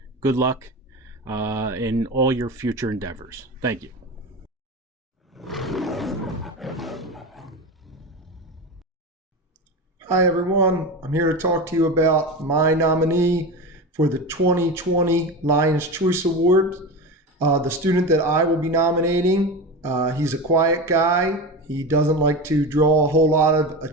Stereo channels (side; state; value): both; normal; correlation 0.24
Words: Good luck in all your future endeavors. Thank you. Hi everyone, I'm here to talk to you about my nominee for the 2020 Lions Choice Award. The student that I will be nominating, he's a quiet guy. He doesn't like to draw a whole lot of